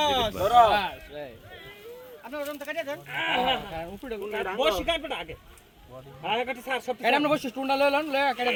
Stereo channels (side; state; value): both; identical; correlation 1.00